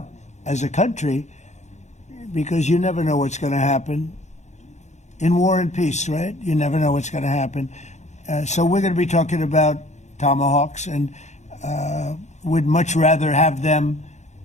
as a country, because you never know what's going to happen. In war and peace, right? You never know what's going to happen. So we're going to be talking about Tomahawks, and would much rather have them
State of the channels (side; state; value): right; late; 0.33 ms